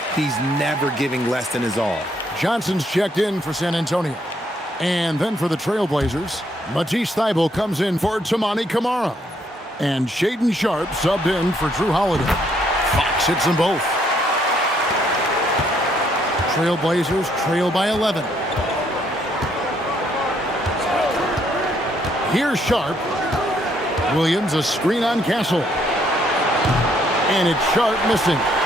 he's never giving less than his all. Johnson's checked in for San Antonio. And then for the Trailblazers, Matisse Thybulle comes in for Tamani Kamara. And Shaedon Sharpe subbed in for Drew Holiday. Fox hits them both. Trailblazers trail by 11. Here's Sharpe. Williams, a screen on Castle. And it's Sharpe missing.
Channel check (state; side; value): normal; both; correlation 0.70